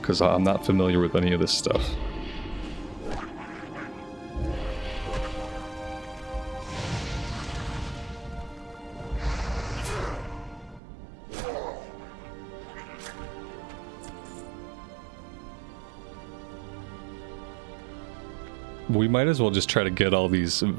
because I'm not familiar with any of this stuff. We might as well just try to get all these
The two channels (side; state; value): left; drops out; at 10.8 s